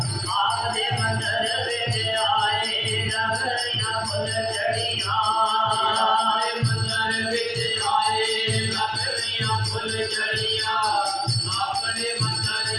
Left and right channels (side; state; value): both; identical; correlation 1.00